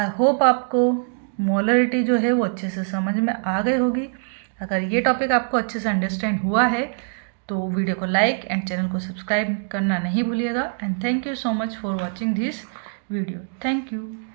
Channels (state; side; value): silent; left; digital silence